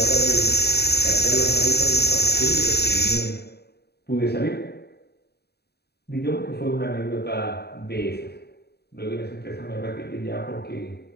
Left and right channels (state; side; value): late; right; 0.47 ms